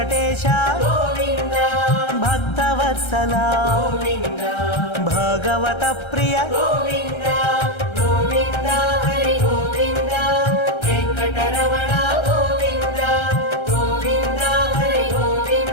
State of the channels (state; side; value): late; right; 1.3 ms